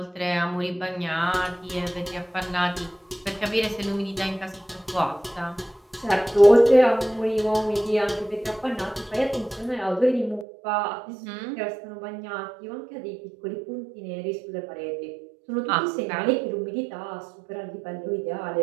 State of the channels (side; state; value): left; drops out; at 10.5 s